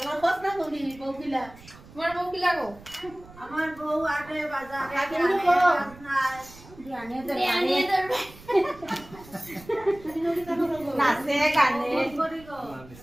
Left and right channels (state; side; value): noise; right; rumble, 20 dB below the sound